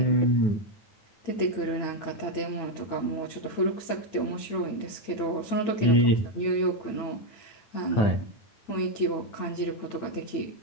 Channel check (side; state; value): right; late; 8.9 ms